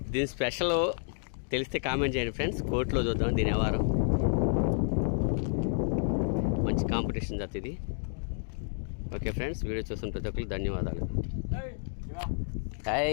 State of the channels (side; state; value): right; silent; digital silence